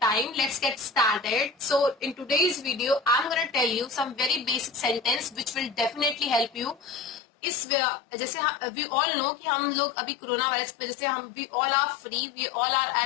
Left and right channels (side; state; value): right; drops out; at 7.2 s